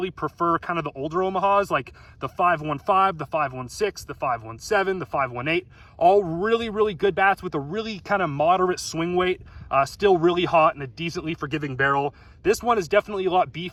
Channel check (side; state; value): both; identical; correlation 1.00